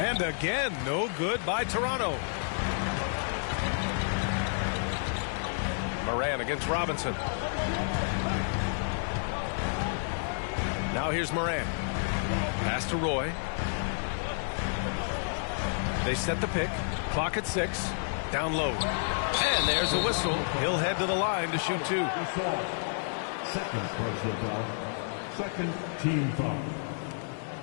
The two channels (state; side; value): silent; right; 58 dB below the other